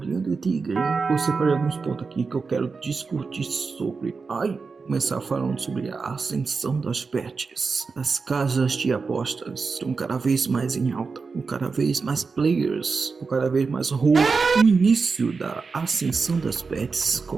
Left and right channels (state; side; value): quieter; left; 4.7 dB